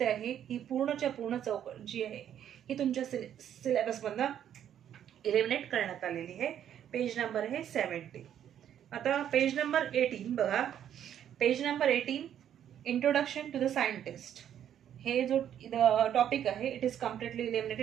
आहे. ही पूर्णच्या पूर्ण चौकट जी आहे ही तुमच्या सिलेबस मधनं इलिमिनेट करण्यात आलेली आहे. पेज नंबर आहे 70. आता पेज नंबर 18 बघा. Page number 18 introduction to the scientist. हे जो टॉपिक आहे it is completely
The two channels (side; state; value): left; quieter; 10.0 dB